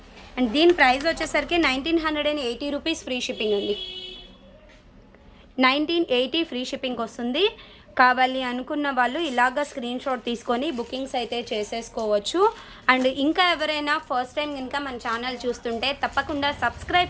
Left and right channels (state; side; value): identical; both; correlation 1.00